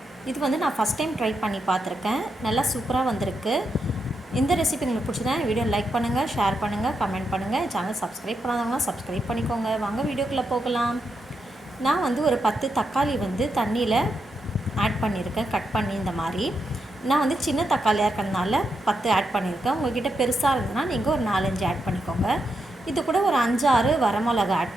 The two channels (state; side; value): normal; both; correlation 0.84